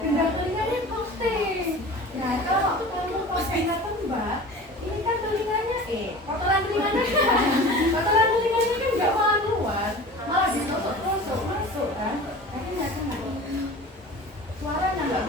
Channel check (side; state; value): both; normal; correlation 0.38